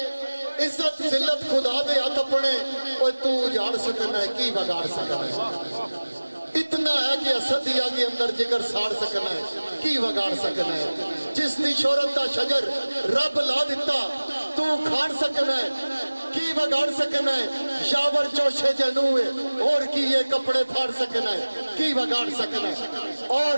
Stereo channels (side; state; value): both; inverted; correlation -1.00